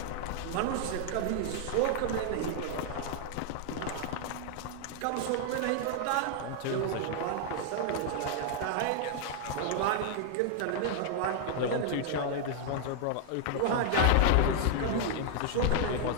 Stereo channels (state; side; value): different; both; correlation 0.00